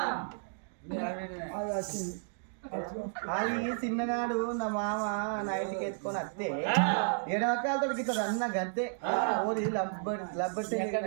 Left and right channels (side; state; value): left; silent; digital silence